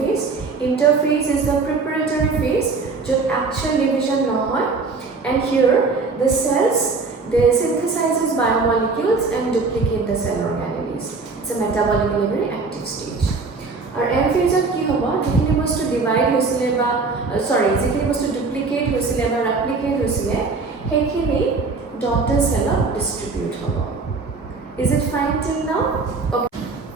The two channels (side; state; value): left; quieter; 4.2 dB